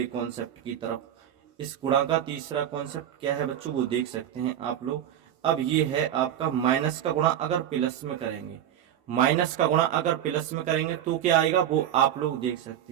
कॉन्सेप्ट की तरफ। इस गुणा का तीसरा कॉन्सेप्ट क्या है बच्चों, वो देख सकते हैं आप लोग। अब ये है आपका माइनस का गुणा अगर प्लस में करेंगे, माइनस का गुणा अगर प्लस में करेंगे तो क्या आएगा, वो आप लोग देख सकते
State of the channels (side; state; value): left; quieter; 10.6 dB